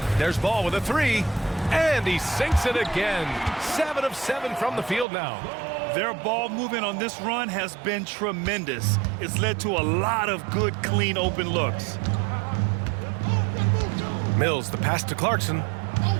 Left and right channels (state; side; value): drops out; left; at 5.1 s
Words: There's Ball with a 3. And he sinks it again. 7 of 7 from the field now. Their ball movement on this run has been tremendous. It's led to a lot of good, clean, open looks. Mills, the pass to Clarkson.